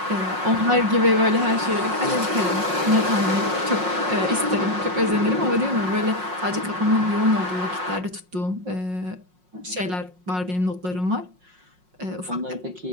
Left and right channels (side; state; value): left; late; 5.5 ms